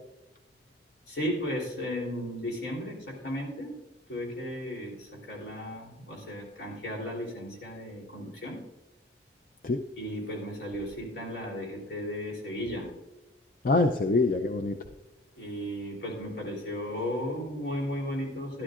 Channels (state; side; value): normal; both; correlation 0.44